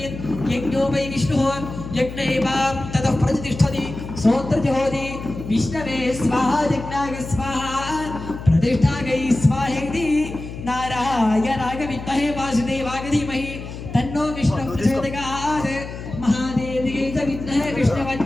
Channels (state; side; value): noise; left; hum, 10 dB below the sound